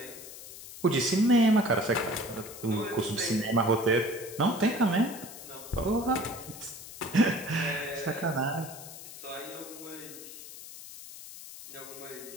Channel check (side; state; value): left; noise; hiss, 14 dB below the sound